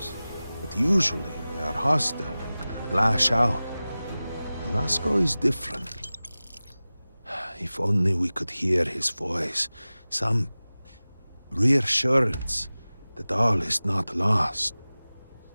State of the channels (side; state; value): both; inverted; correlation -0.97